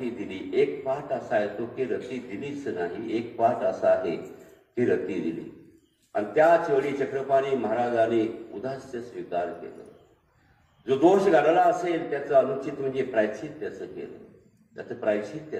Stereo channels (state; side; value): identical; both; correlation 1.00